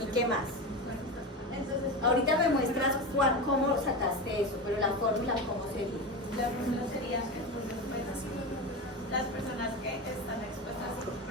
¿Y qué más? Entonces, Ahorita me muestras cómo sacaste eso, pero la fórmula, ¿cómo sería? la fórmula sería entonces, pues, las personas que están expuestas y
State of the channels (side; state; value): both; normal; correlation 0.21